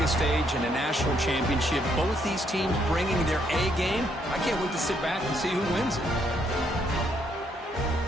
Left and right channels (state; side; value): normal; both; correlation 0.72